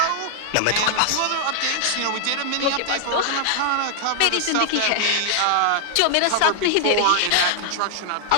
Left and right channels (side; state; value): both; different; correlation -0.01